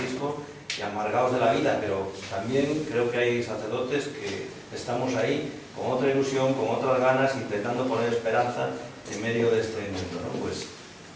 y amargados de la vida, pero también creo que hay sacerdotes que estamos ahí con otra ilusión, con otras ganas, intentando poner esperanza en medio de este mundo, ¿no? Pues,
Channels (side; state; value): both; identical; correlation 1.00